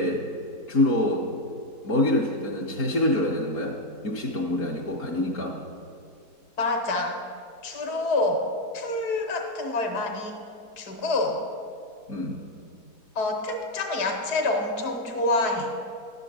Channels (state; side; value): late; right; 4.7 ms